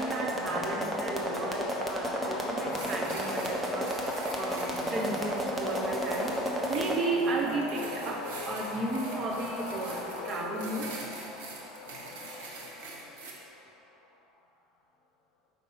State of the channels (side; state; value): both; normal; correlation 0.45